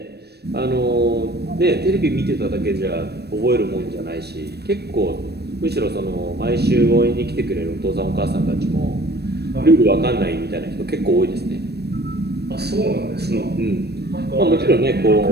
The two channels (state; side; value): late; left; 0.47 ms